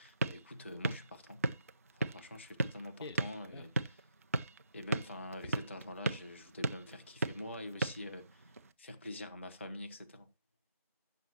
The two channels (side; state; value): both; inverted; correlation -0.77